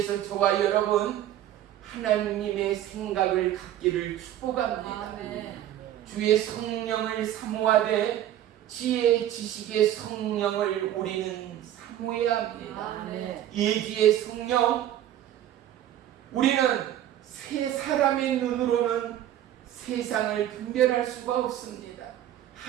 저와 여러분 하나님의 생각을 갖기를 축복합니다. 주의 성령을 사모하되 지혜 지식의 성령을 우리는 사모해야 합니다. 예기의 성령, 우리는 세 사람의 눈으로는 세상을 분별할 수가 없습니다.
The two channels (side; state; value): left; quieter; 12.1 dB